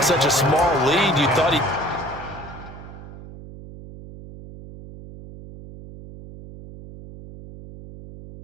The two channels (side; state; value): right; noise; hum, 15 dB below the sound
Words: such a small lead, you thought he...